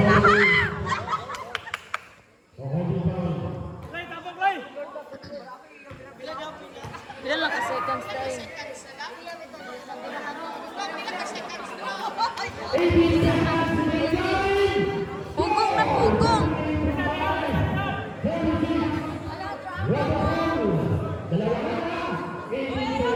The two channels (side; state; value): both; identical; correlation 1.00